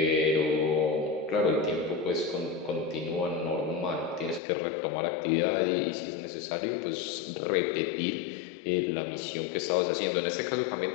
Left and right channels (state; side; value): drops out; right; at 4.4 s